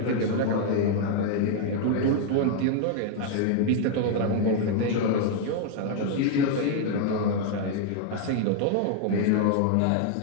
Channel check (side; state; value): both; different; correlation 0.00